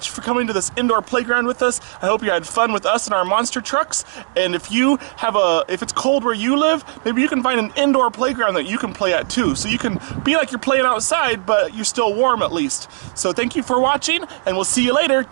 for coming to this indoor playground with us. I hope you had fun with us and our monster trucks. And if it's cold where you live, maybe you can find an indoor playground that you can play at too. So you can be like you're playing outside, but you're still warm at least. So thank you for watching, and we'll see you later.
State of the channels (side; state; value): left; silent; digital silence